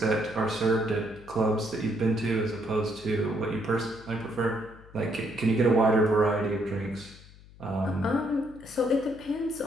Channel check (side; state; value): left; noise; hum, 22 dB below the sound